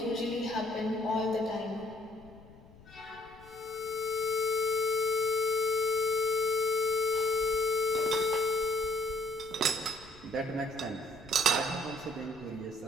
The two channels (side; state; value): left; noise; rumble, 23 dB below the sound